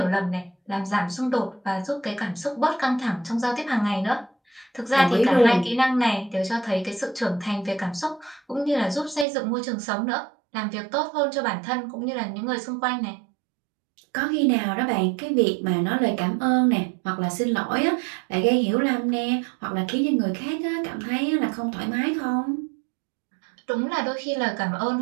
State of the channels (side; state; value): left; drops out; at 9.2 s